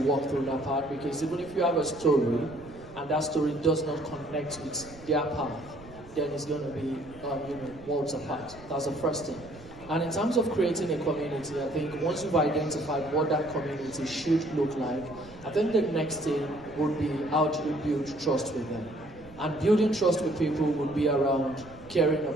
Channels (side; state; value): right; noise; rumble, 20 dB below the sound